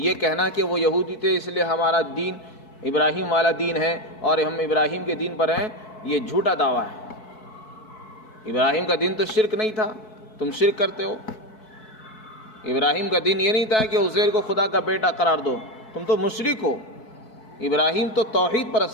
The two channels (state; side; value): late; right; 4.6 ms